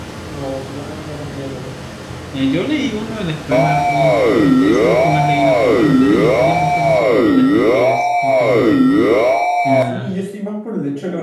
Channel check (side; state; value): both; identical; correlation 1.00